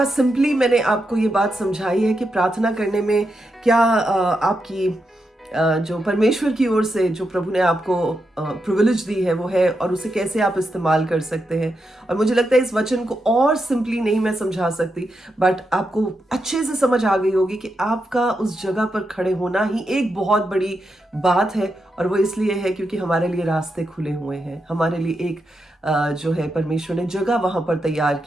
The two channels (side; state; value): both; normal; correlation 0.85